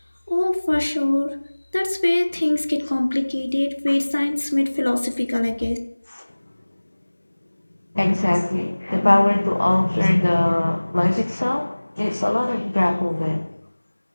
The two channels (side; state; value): both; inverted; correlation -1.00